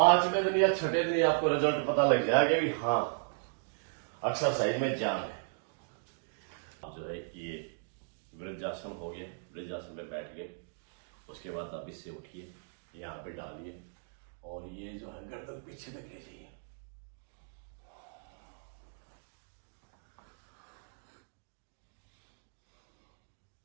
दिन या 6ठे दिन आपको रिजल्ट पता लग जाएगा कि हाँ एक्सरसाइज में जान है। अब जो है ये वृद्धासन हो गया, वृद्धासन पे बैठ गए। उसके बाद आप इससे उठिए, यहाँ पे डालिए और ये जो है गर्दन पीछे तक ले जाइए।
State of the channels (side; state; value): left; silent; digital silence